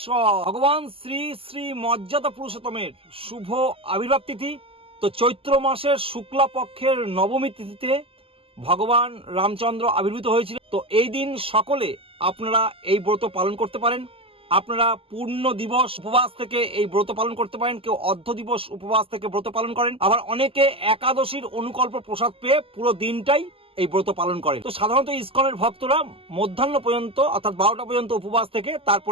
ভগবান শ্রী শ্রী মর্যাদা পুরুষোত্তমের শুভ আবির্ভাব তিথি। তো চৈত্র মাসের শুক্লা পক্ষের নবমী তিথিতে ভগবান রামচন্দ্র আবির্ভূত হয়েছিল। তো এই দিন সকলে আপনারা এই ব্রত পালন করতে পারেন। আপনারা পূর্ণ দিবস উপবাস থেকে এই ব্রত পালন করতে পারেন, কেউ অর্ধ দিবস উপবাস থেকে ব্রত পালন করেন, আবার অনেকে একাদশীর অনুকল্প প্রসাদ পেয়ে পুরো দিনটাই এই ব্রত পালন করেন। তো সাধারণত ইসকনের ভক্তরা মধ্যাহ্ন পর্যন্ত অর্থাৎ 12টা পর্যন্ত উপবাস থেকে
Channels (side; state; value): left; late; 0.27 ms